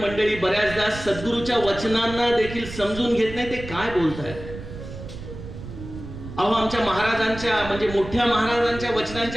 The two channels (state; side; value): noise; right; rumble, 11 dB below the sound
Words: बऱ्याचदा सद्गुरूच्या वचनांना देखील समजून घेत नाही ते काय बोलतायत. अहो, आमच्या महाराजांच्या म्हणजे मोठ्या महाराजांच्या